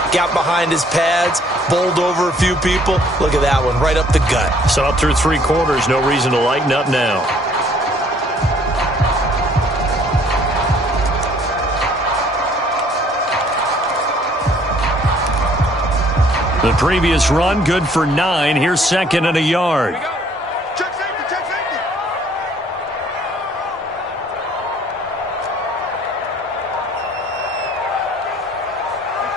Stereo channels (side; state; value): both; normal; correlation 0.60